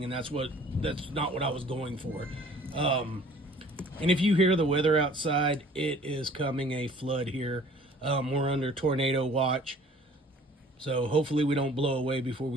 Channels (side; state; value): both; normal; correlation 0.52